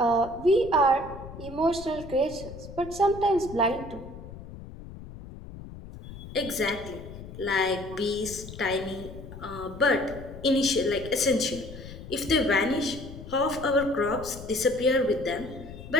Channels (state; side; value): noise; left; rumble, 14 dB below the sound